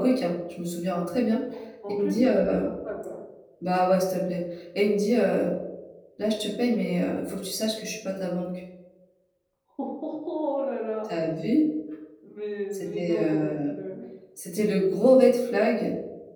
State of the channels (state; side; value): identical; both; correlation 1.00